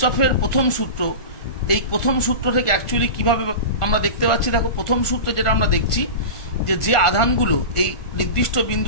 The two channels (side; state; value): right; late; 1.4 ms